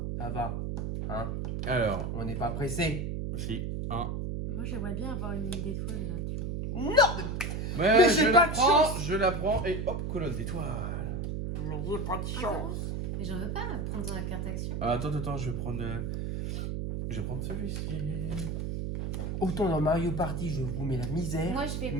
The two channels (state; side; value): noise; right; hum, 2 dB below the sound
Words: ça va. Hein, Alors, on n'est pas pressé. si, 1. Moi, j'aimerais bien avoir une ligne d'étoile là, tu vois. Non, Mais j'ai je pas la de prends, chance. je la prends et hop, colonne d'étoiles. mais j'ai pas de chance. Mais j'en veux pas prendre la carte action. Ah, attends, je vais prendre. Je vais prendre celui-ci. Autant dans Mario Party, je vous mets la misère. Moi, je vais